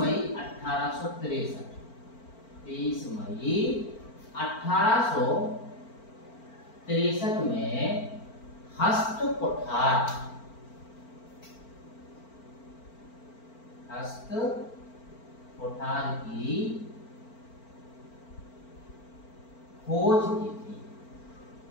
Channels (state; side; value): late; right; 4.4 ms